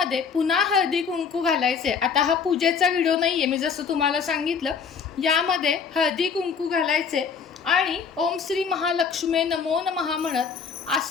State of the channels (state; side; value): quieter; right; 6.1 dB